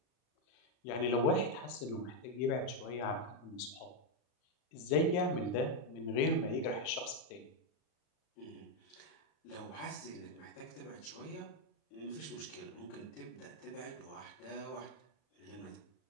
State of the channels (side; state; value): right; late; 40 ms